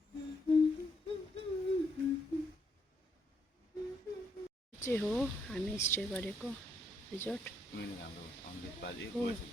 चाहिँ हो हामी स्टे गरेको रिजोर्ट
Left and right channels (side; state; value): both; normal; correlation 0.74